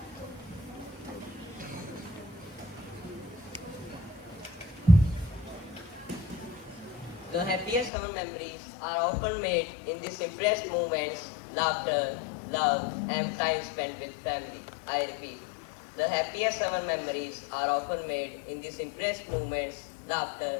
The happiest summer memories are often made in the simplest moments, laughter, love, and time spent with family. I repeat, the happiest summer memories are often made in the simplest moments,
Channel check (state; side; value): drops out; right; at 7.9 s